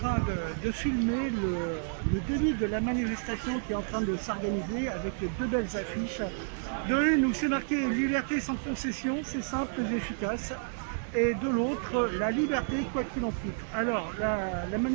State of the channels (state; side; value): silent; left; digital silence